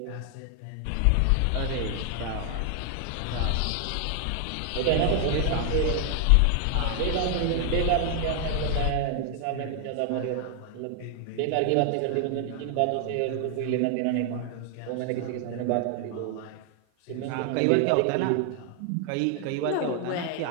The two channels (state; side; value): different; both; correlation 0.00